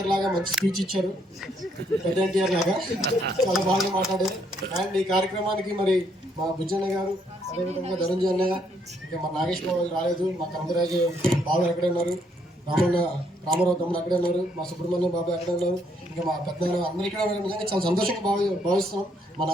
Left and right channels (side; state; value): both; normal; correlation 0.71